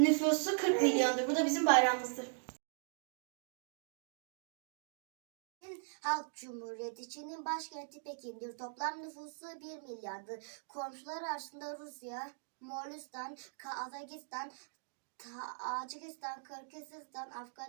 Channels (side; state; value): left; silent; digital silence